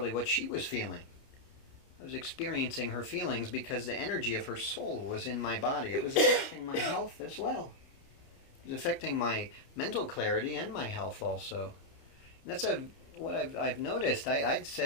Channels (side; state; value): right; late; 30 ms